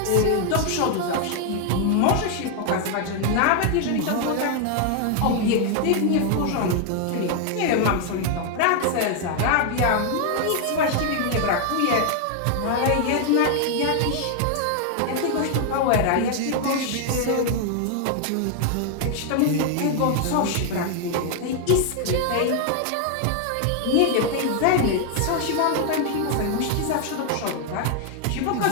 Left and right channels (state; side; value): different; both; correlation 0.00